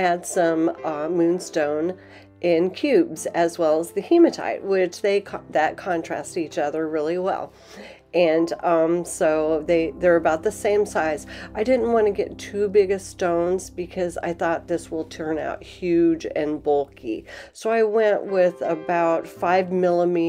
some moonstone in cubes as well as the hematite, which that contrast each other really well. And so they're about the same size. I didn't want to get too big of stones because I thought this will turn out huge and bulky. So I went with about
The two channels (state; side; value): identical; both; correlation 1.00